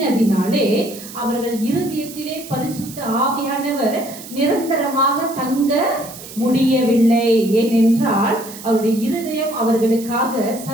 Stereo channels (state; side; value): noise; right; hiss, 15 dB below the sound